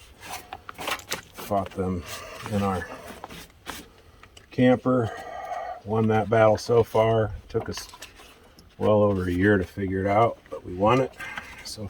Fought them in our camper, won that battle so far. Took us well over a year to figure it out, but we won it so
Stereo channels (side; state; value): both; identical; correlation 1.00